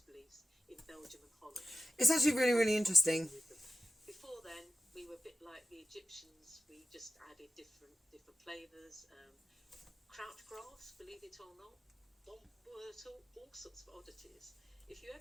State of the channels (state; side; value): normal; both; correlation 0.93